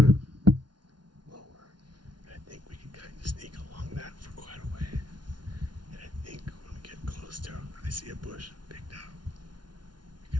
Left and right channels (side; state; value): left; late; 0.70 ms